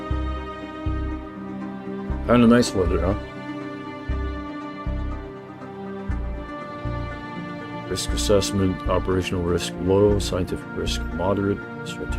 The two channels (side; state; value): both; identical; correlation 1.00